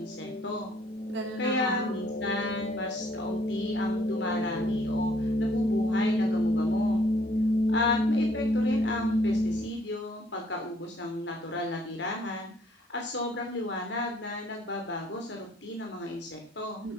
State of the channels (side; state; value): both; normal; correlation 0.63